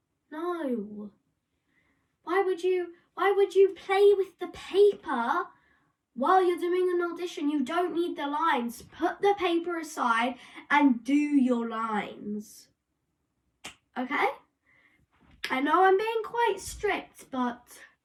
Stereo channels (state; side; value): identical; both; correlation 1.00